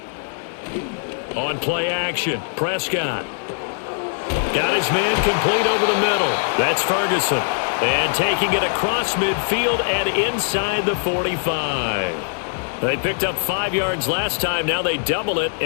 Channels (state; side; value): silent; right; digital silence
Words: On play action, Prescott. Got his man complete over the middle. That's Ferguson. And taking it across midfield and inside the 45. They picked up 5 yards last time. Now they double it